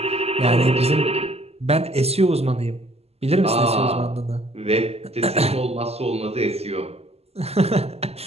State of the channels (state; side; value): late; left; 0.29 ms